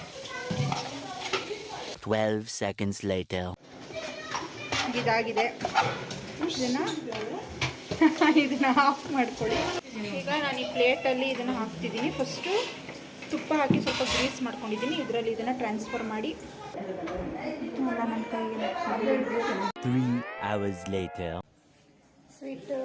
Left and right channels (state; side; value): identical; both; correlation 1.00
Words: 12 seconds later. ಇದಾಗಿದೆ. ಇದನ್ನು ಆಫ್ ಮಾಡ್ಕೊಳ್ಳಿ. ಈಗ ನಾನು ಈ ಪ್ಲೇಟಲ್ಲಿ ಇದನ್ನು ಹಾಕ್ತಿದ್ದೀನಿ. ಫಸ್ಟು ತುಪ್ಪ ಹಾಕಿ ಸ್ವಲ್ಪ ಗ್ರೀಸ್ ಮಾಡ್ಕೊಂಡಿದ್ದೀನಿ. ಇದರಲ್ಲಿ ಇದನ್ನು ಟ್ರಾನ್ಸ್ಫರ್ ಮಾಡಿ ಎಲ್ಲ ನನ್ನ ಕೈಗೆ 3 hours later. ಸ್ವೀಟ್